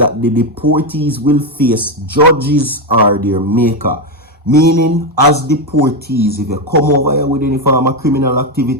the deportees will face judges or their maker. Meaning, as deportees, if you come over here with any form of criminal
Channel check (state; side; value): normal; both; correlation 0.08